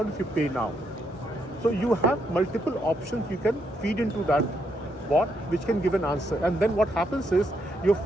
if you pay now. So you have multiple options you can feed into that bot, which can give an answer. And then what happens is, your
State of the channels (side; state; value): both; normal; correlation 0.77